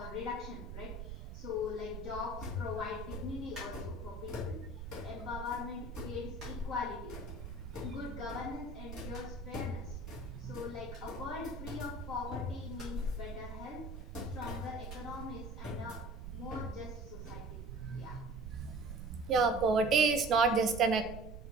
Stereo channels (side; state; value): right; noise; rumble, 8 dB below the sound